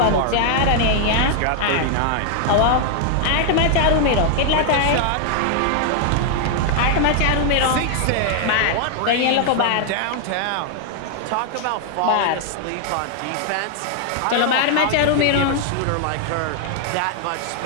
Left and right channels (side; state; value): both; different; correlation 0.00